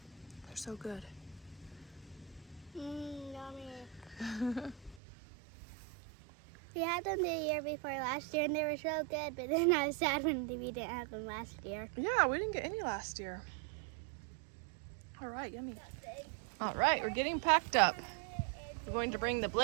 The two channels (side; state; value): left; drops out; at 5.0 s